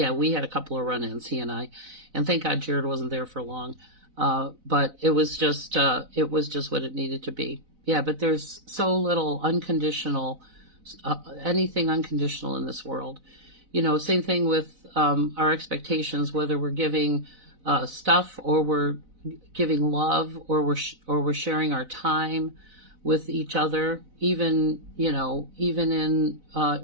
had a couple of run-ins, he and I. And thank God Jared wasn't there for long. But it was just what it needed to be. Yeah, but there's so little unconditional, anything unconditional in this world. Same thing with our expectations, whether we're giving stuff or we're giving love or we're sharing our time with each other, even in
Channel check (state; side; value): late; left; 4.0 ms